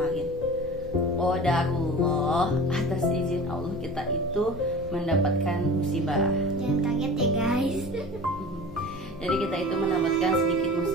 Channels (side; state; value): both; normal; correlation 0.37